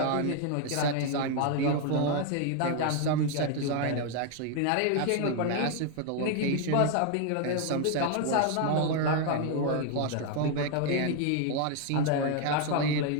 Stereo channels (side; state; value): both; different; correlation 0.01